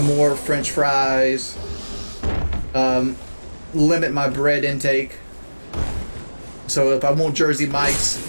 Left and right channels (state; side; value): inverted; both; correlation -1.00